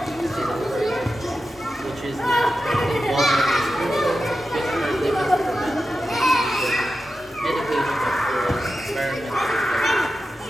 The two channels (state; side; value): normal; both; correlation 0.91